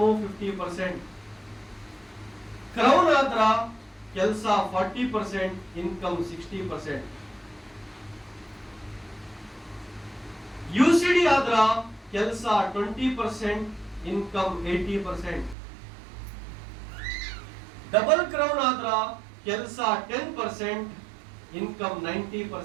50%. ಕ್ರೌನ್ ಆದ್ರ ಕೆಲಸ 40%, ಇನ್ಕಮ್ 60%. ಯುಸಿಡಿ ಆದ್ರ ಕೆಲಸ 20%, ಇನ್ಕಮ್ 80%. ಡಬಲ್ ಕ್ರೌನ್ ಆದ್ರ ಕೆಲಸ 10%, ಇನ್ಕಮ್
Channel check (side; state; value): left; drops out; at 15.6 s